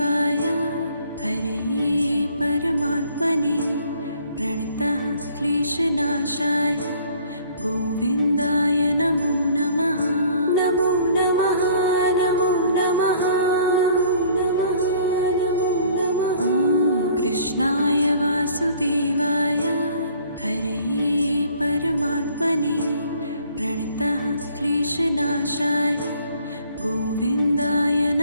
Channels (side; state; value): both; inverted; correlation -0.56